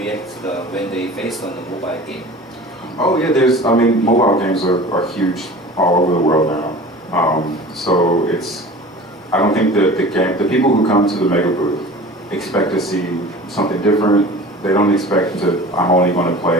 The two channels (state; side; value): normal; both; correlation 0.39